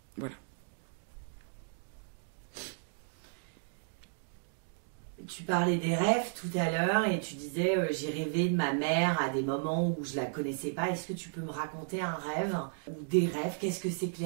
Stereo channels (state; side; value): silent; left; digital silence